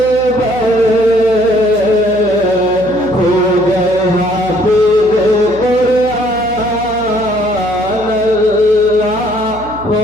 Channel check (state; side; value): noise; right; hum, 16 dB below the sound